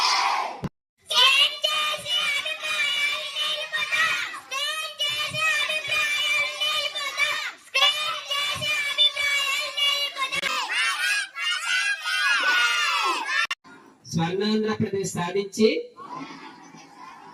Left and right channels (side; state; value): both; identical; correlation 1.00